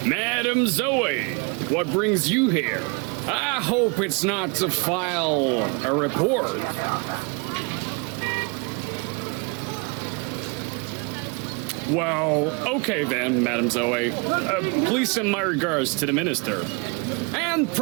Madame Zoe, what brings you here? I hope it's not to file a report. Well, okay then, Madame Zoe. Please send my regards to the minister. And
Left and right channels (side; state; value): left; quieter; 31.5 dB